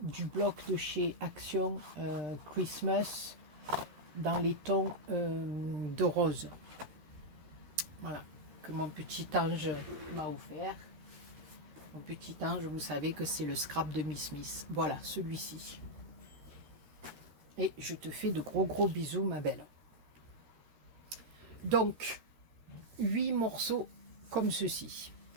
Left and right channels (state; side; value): late; left; 13 ms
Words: du bloc de chez Action Christmas dans les tons de rose. Voilà, que mon petit ange m'a offert. Mon petit ange, vous savez que c'est le scrap de Miss Smith. Voilà, celui-ci. Et je te fais de gros bisous, ma belle. Donc, 8 morceaux comme ceci.